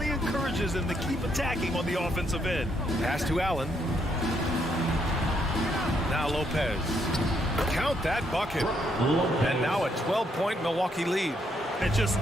encourages them to keep attacking on the offensive end. Pass to Allen. Now Lopez. Count that bucket. And now a 12-point Milwaukee lead. And just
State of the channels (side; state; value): both; normal; correlation 0.74